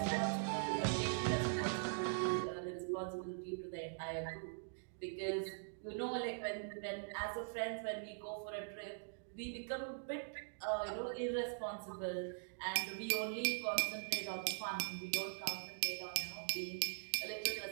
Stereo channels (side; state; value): left; silent; digital silence